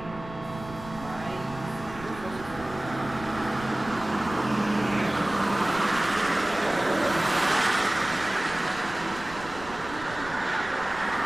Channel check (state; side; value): noise; right; rumble, 15 dB below the sound